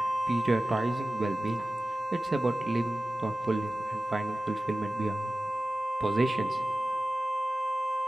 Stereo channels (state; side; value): normal; both; correlation 0.96